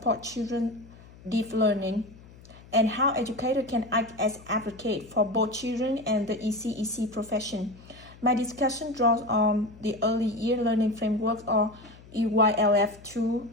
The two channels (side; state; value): left; noise; hum, 22 dB below the sound